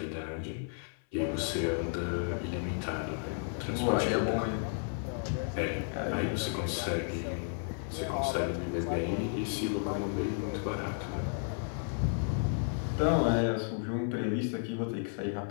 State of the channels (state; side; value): silent; right; 56 dB below the other